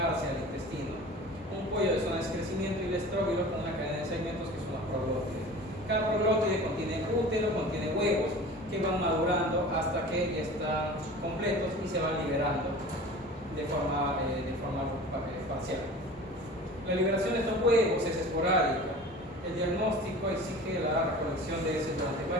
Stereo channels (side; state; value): both; normal; correlation 0.39